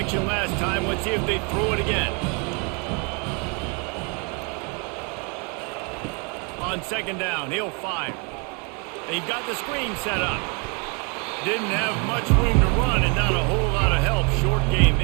last time. Let's see if they throw it again. On 2nd down, he'll fire. They've got the screen set up. Didn't have much room to run and not a whole lot of help. Short game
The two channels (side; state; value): left; quieter; 34.6 dB